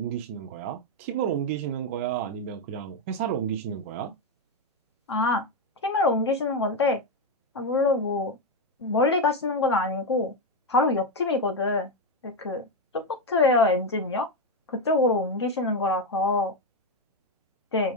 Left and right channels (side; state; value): both; normal; correlation 0.07